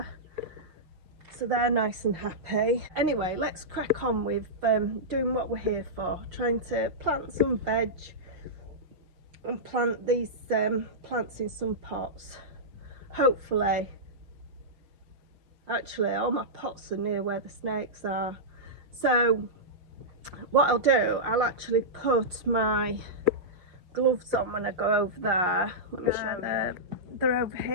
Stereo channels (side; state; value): left; late; 5.6 ms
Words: so they're nice and happy. Anyway, let's crack on with doing what we're here for, trying to plant some veg and plant these plants in some pots. Hopefully, actually all my pots are near where the snakes are, so what I'll do, I'll actually put my gloves on when I go over there. Let me show you. They're over